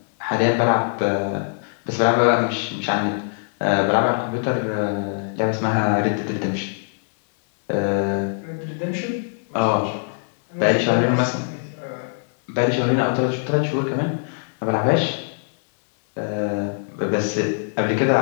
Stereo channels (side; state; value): right; silent; digital silence